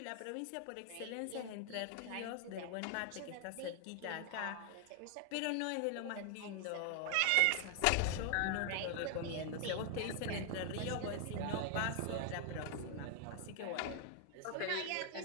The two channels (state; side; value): different; both; correlation 0.00